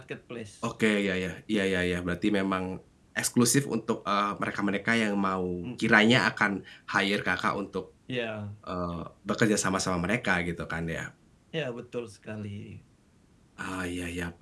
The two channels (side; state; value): both; identical; correlation 1.00